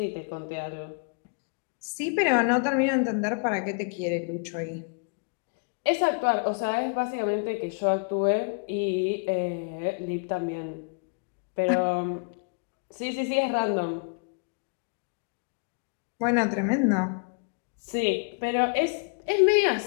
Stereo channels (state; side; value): quieter; right; 36.1 dB